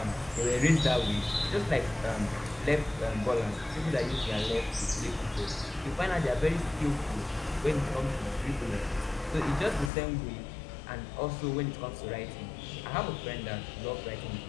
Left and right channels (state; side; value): drops out; right; at 9.9 s